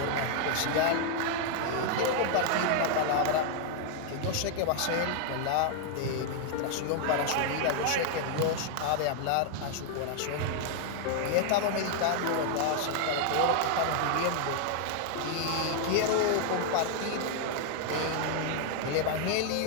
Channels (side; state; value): both; different; correlation 0.00